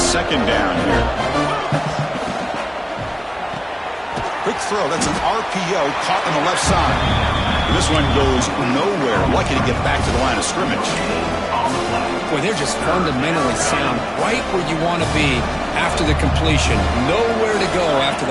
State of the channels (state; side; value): identical; both; correlation 1.00